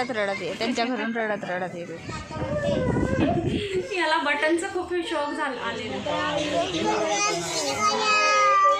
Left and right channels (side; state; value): both; identical; correlation 1.00